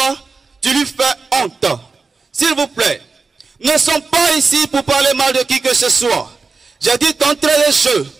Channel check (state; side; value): quieter; left; 4.4 dB